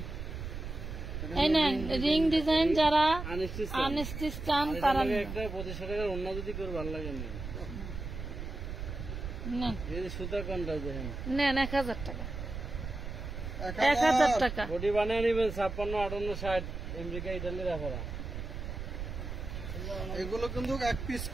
এই নেন রিং ডিজাইন, যারা আনস্টিচ চান তারা একটা 2500 টাকার অন্য যদি করে ভালো লাগে না। নেন, এই যে সুতা কোনটা দেখেন, নেন 1000 টাকা, 1000 টাকা। বডি বানিয়ে নেবেন 56, 58, 60 আমেরিকা, ইটালির রাখারা। এগুলো কিন্তু এক পিস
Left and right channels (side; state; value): right; noise; rumble, 7 dB below the sound